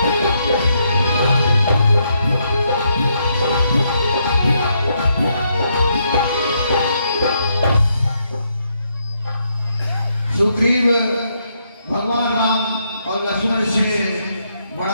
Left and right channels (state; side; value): inverted; both; correlation -0.76